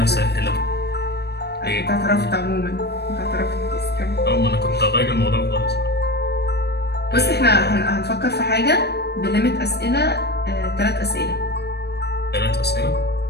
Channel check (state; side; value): late; right; 0.48 ms